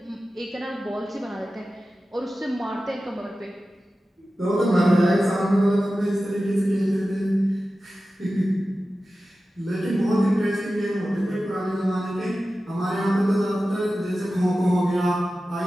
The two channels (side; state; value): both; normal; correlation 0.94